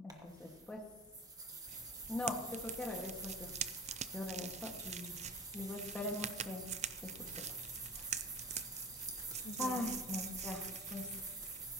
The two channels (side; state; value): both; normal; correlation 0.35